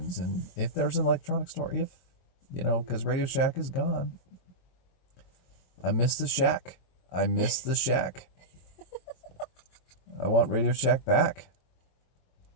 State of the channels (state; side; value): late; right; 23 ms